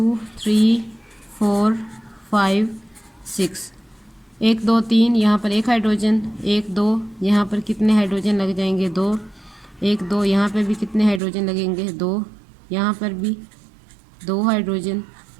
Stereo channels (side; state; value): left; drops out; at 11.2 s